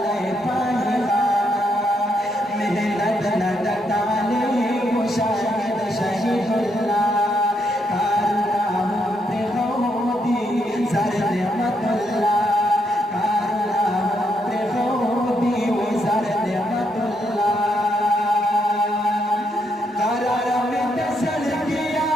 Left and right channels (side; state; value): both; normal; correlation 0.77